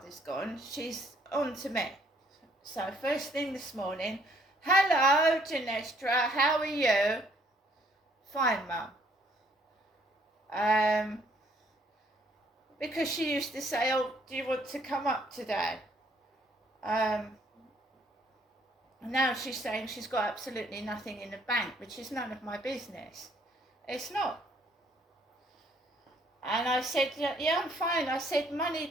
gone, she's on to me. So first thing this morning, hello Genestra, how are you? Fine mum. Because she used to say, oh, do you want to come up today? Now she's saying she's got absolutely nothing in the bank, which is none of my business. It's not. And I said, yeah, I'm fine. I said, money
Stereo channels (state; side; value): normal; both; correlation 0.64